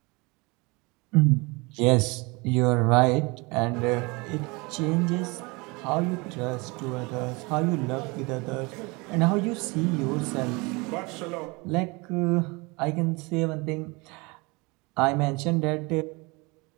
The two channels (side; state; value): left; quieter; 26.6 dB